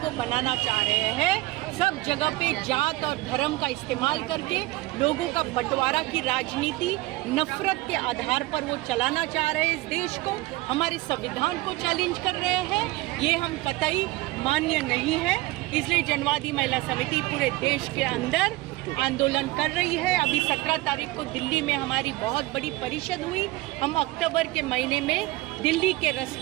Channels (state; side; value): quieter; left; 19.6 dB